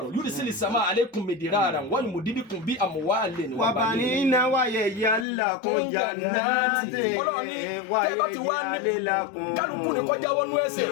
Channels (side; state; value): right; drops out; at 5.2 s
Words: yursilis samaa alaykum midraran wa yumdidukum bi amwalin wa banina wa yaj'alakum jannatin wa yaj'alakum kálukú ni kọjá wọnú ẹsẹ̀